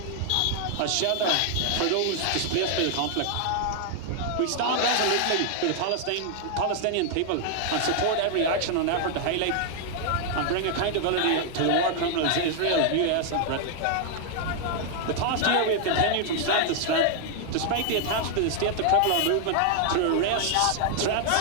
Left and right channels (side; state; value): both; different; correlation 0.00